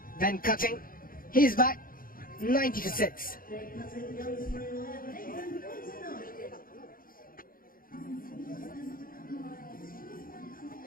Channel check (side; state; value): right; late; 0.41 ms